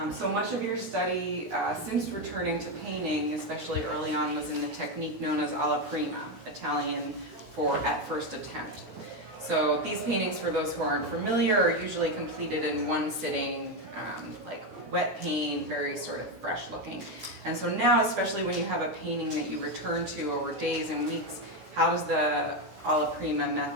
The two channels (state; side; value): late; left; 16 ms